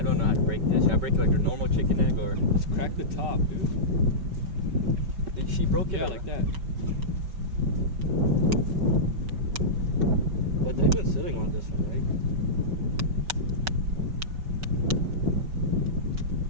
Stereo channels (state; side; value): late; left; 5.3 ms